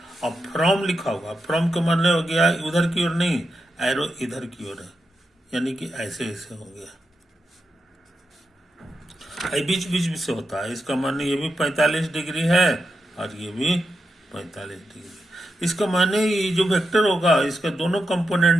और फ्रॉम लिखा होगा, फ्रॉम का मतलब हो गया उधर की ओर नहीं, एरो इधर की ओर है, यानी कि ऐसे ऐसे हो गया, बीच बीच भी से होता है, इसका माने ये भी 45 डिग्री है और ये भी 45 डिग्री। इसका माने ये जो वेक्टर होगा इसका दोनों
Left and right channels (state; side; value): normal; both; correlation 0.87